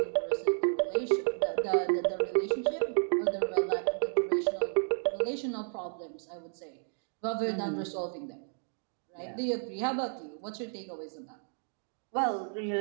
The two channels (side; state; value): left; silent; digital silence